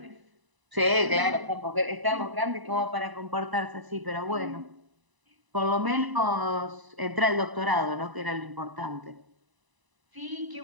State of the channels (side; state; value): left; late; 1.0 ms